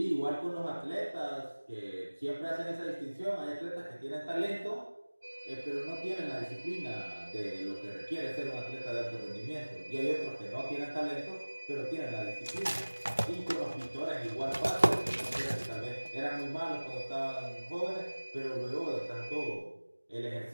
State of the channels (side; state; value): both; inverted; correlation -1.00